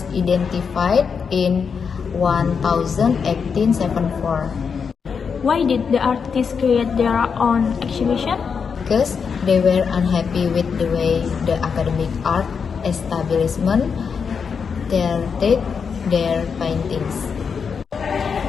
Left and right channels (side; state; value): right; quieter; 6.1 dB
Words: identified in 1874 Why did the artists create their own exhibition? because they were unhappy with the way the academic art establishment treated their paintings.